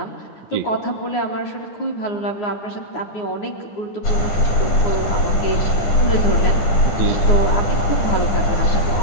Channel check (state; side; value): late; right; 10 ms